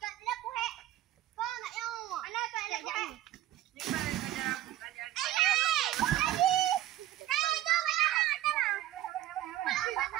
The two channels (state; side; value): quieter; left; 13.9 dB